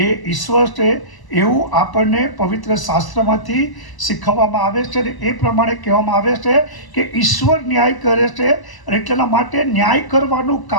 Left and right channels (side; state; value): right; late; 1.0 ms